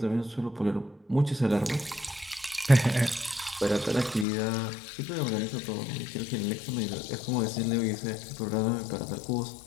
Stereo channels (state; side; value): drops out; right; at 4.2 s